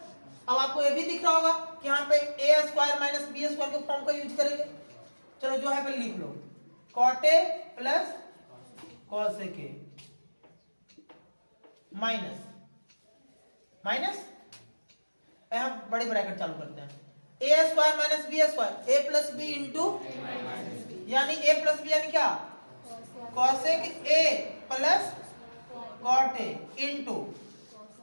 अब आपको ये भी दिख रहा होगा कि यहाँ पे A square minus B square के फॉर्म का यूज करेंगे। चलो जो है पहले लिख लो, कॉट ए प्लस कॉस ए के माइनस माइनस हम बड़े ब्रैकेट चालू करते हैं, A square minus B square, A plus B into यानी ए प्लस बी यानी क्या, cosec A plus cot A into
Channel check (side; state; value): both; inverted; correlation -1.00